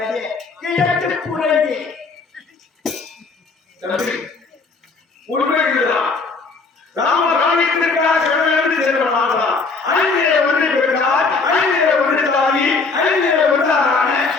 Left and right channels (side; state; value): right; quieter; 4.2 dB